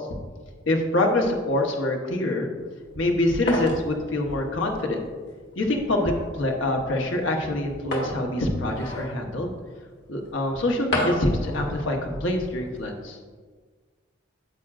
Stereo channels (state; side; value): normal; both; correlation 0.44